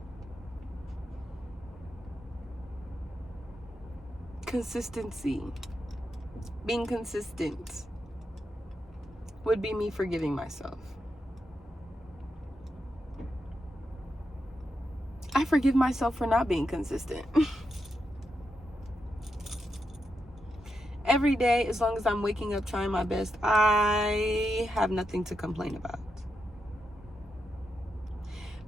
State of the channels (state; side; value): normal; both; correlation 0.85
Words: Consistency, being consistent, would be me forgiving myself. I forgive myself for not being consistent. Every day, as long as I'm waking up trying my best, I have nothing to complain about.